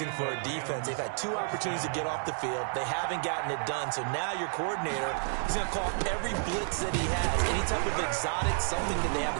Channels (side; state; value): left; silent; 56 dB below the other